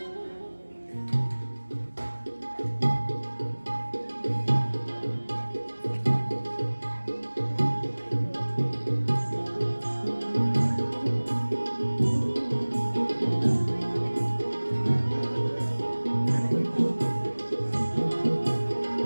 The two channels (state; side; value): inverted; both; correlation -1.00